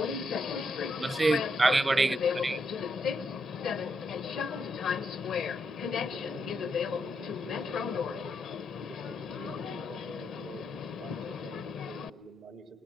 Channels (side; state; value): both; normal; correlation 0.81